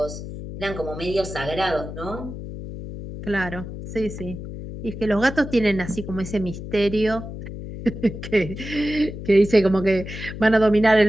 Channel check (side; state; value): left; noise; hum, 9 dB below the sound